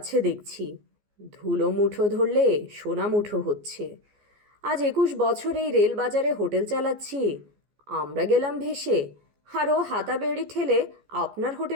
দেখছি। ধুলো মুঠো ধরলে সোনা মুঠো হচ্ছে। আজ 21 বছর এই রেলবাজারে হোটেল চালাচ্ছি। আমরা গেলাম ভেসে, আর ও হাতাবেড়ি ঠেলে আপনার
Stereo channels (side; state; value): left; late; 14 ms